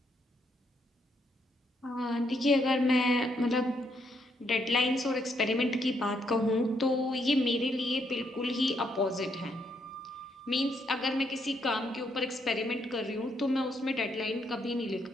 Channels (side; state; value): both; normal; correlation 0.75